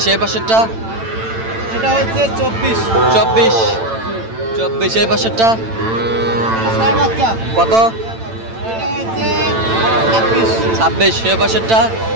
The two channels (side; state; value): left; late; 8.9 ms